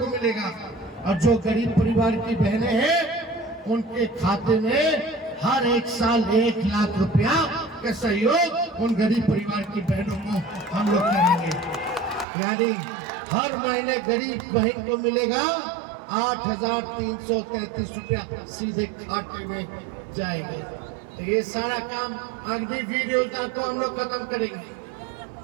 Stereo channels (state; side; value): drops out; left; at 12.2 s